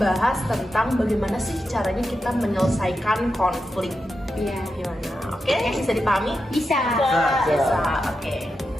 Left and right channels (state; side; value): normal; both; correlation 0.88